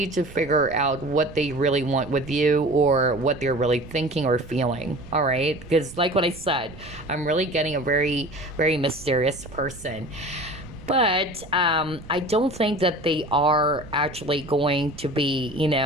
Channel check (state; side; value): noise; right; rumble, 17 dB below the sound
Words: to figure out what they really want with you, or what they're really thinking or feeling, all right? Because like what I said, I'm really getting a very, very mysterious person. But I don't think that they are actually going to be,